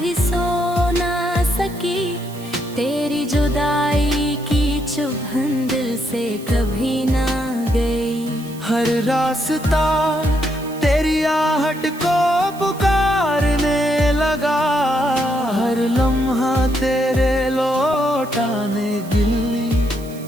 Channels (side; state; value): right; noise; hiss, 20 dB below the sound